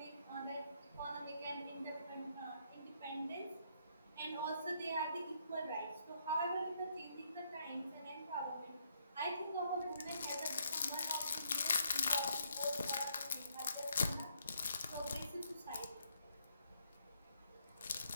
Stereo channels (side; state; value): both; inverted; correlation -0.73